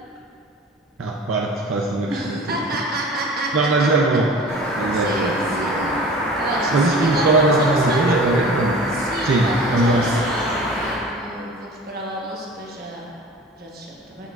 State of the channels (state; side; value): normal; both; correlation 0.40